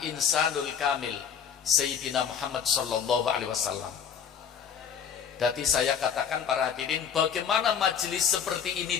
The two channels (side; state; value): right; quieter; 7.5 dB